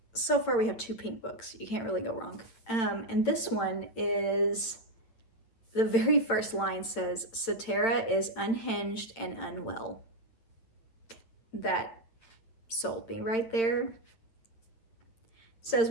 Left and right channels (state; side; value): late; right; 8.9 ms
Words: so far we have 2 pink books. You can't really go wrong. And this one is, the very first line says, Satara is unhinged and unwell. That sold me right there. Says,